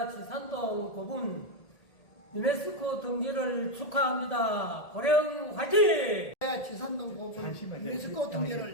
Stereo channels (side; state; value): right; late; 1.8 ms